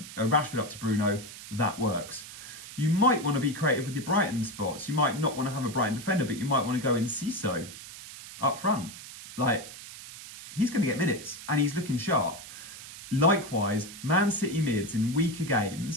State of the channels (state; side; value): noise; right; hiss, 14 dB below the sound